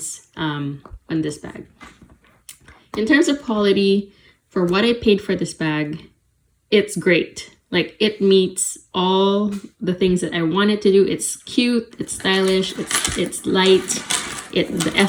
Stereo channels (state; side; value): identical; both; correlation 1.00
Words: on this bag. In terms of quality, for what I paid for this bag, it's great. Like, it meets all the things that I wanted to do. It's cute, it's stylish, it's light, the